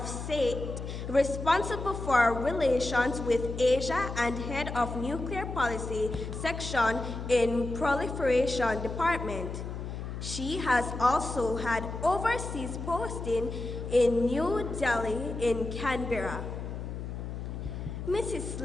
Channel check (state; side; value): noise; left; hum, 7 dB below the sound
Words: State, responsible for relations with Asia and Head of Nuclear Policy Section in Proliferation Department. She has also had overseas posting in New Delhi and Canberra. Mrs.